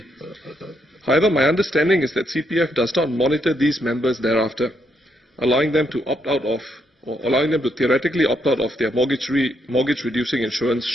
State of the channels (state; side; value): normal; both; correlation 0.76